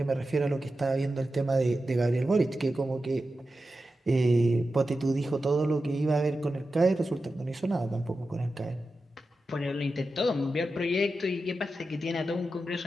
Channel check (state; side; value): normal; both; correlation 0.92